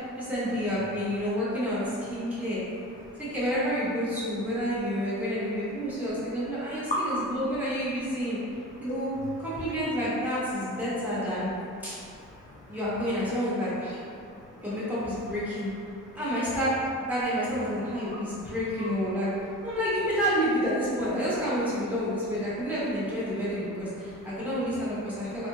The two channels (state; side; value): normal; both; correlation 0.34